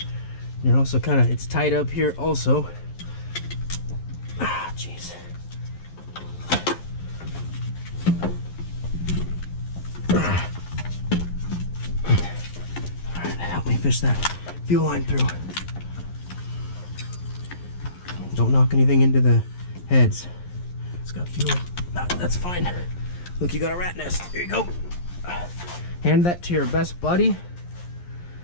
You're also kind of, it's tight up here also. Ah, jeez. fish that fuel line through. Don't knock anything into the heads. It's got fuel. That's fine. Look, you got a rat nest. Here you go. Hand that to your best buddy.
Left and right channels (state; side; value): late; right; 11 ms